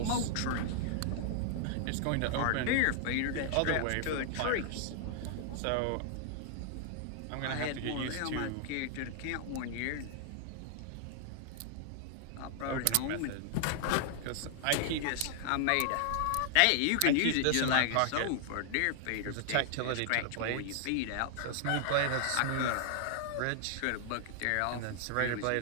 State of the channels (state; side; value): different; both; correlation -0.01